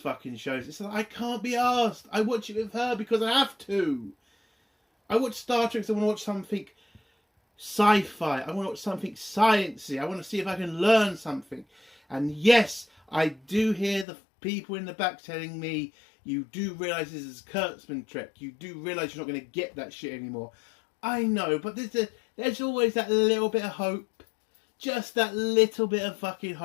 shows. It's like, I can't be asked. I watch it with her because I have to. I watch Star Trek because I want to watch something sci-fi. I want to watch something sciencey. I want to see if I can learn something. And yes, I do hear the people in the back telling me, you do realise this is Kurtzman Trek. You do realise you're not going to get that shit anymore. I know, but there's always that little bit of hope. Just that little bit of fucking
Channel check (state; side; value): drops out; right; at 14.1 s